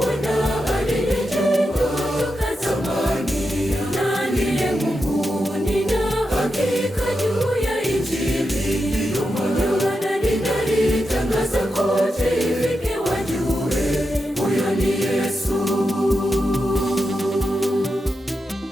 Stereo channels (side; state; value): both; normal; correlation 0.87